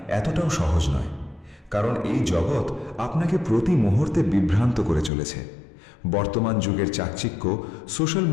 এতটাও সহজ নয়, কারণ এই জগৎ আপনাকে প্রতি মুহূর্তে বিভ্রান্ত করে চলেছে। বর্তমান যুগের চাকচিক্য, সোশ্যাল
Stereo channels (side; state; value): right; drops out; at 5.1 s